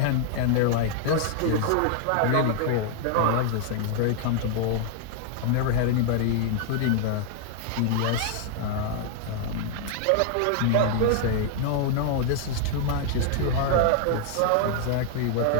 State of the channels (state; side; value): different; both; correlation 0.00